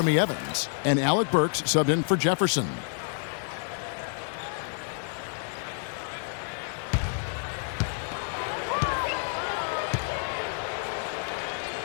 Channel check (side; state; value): right; silent; 59 dB below the other